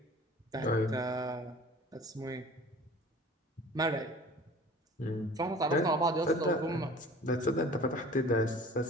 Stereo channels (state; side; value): normal; both; correlation 0.45